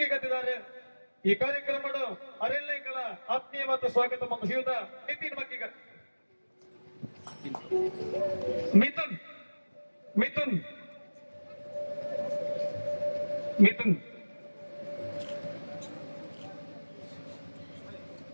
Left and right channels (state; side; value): inverted; both; correlation -1.00